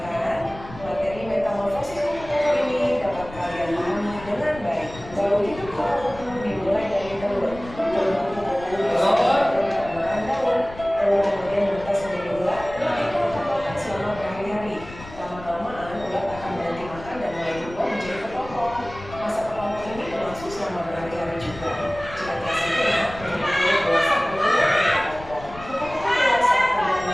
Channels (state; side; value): noise; left; rumble, 16 dB below the sound